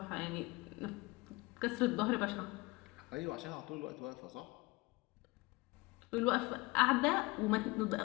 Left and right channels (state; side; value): quieter; right; 23.4 dB